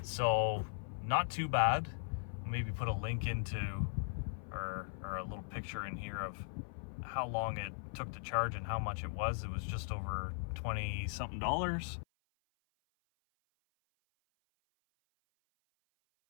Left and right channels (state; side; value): silent; right; 52 dB below the other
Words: So not too bad. Maybe put a link into or a little picture in here of how long it took to charge and how much it was. It was just over 20 something dollars.